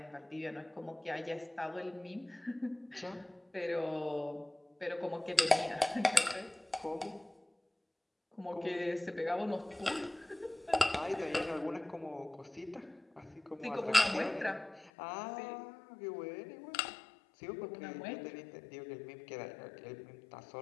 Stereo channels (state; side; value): drops out; right; at 14.9 s